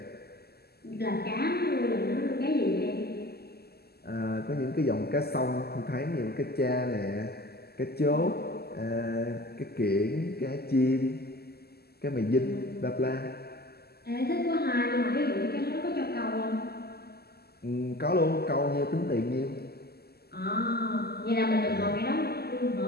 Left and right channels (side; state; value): right; late; 0.46 ms